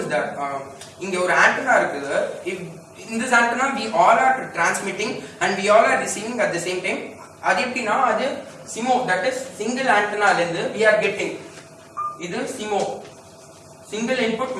is that இங்க ஒரு ஆண்டனா இருக்குது. in this antenna we all are transmitting and we all are receiving at the same time. அது எப்படின்னா, அது SIMO, that is single antenna ல இருந்து we are getting, இது SIMO, single input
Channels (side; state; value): both; identical; correlation 1.00